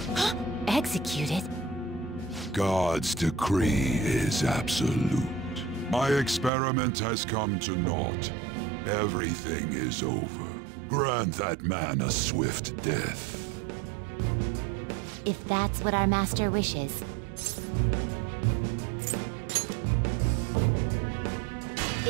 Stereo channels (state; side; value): drops out; left; at 6.5 s